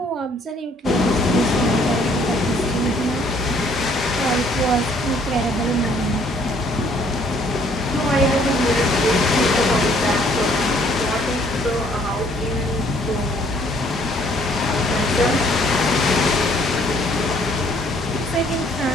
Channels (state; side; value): normal; both; correlation 0.62